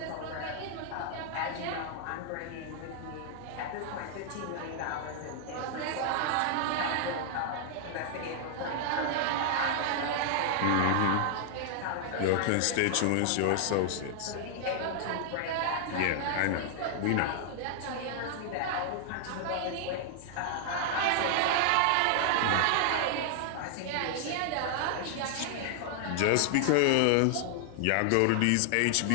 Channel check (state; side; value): different; both; correlation 0.00